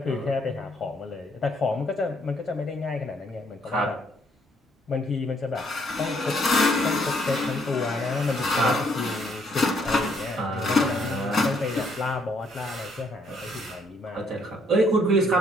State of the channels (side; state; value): both; normal; correlation 0.69